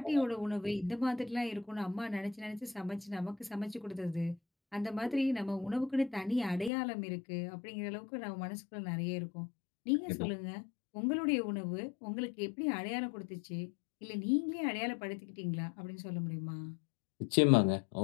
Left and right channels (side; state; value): right; drops out; at 6.7 s